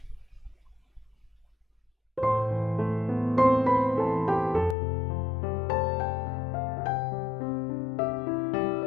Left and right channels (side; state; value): right; drops out; at 4.8 s